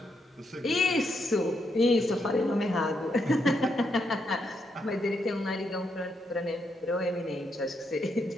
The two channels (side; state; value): both; normal; correlation 0.79